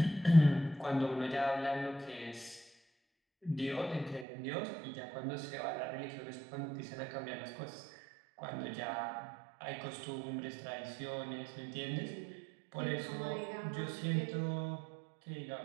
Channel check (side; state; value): left; drops out; at 4.2 s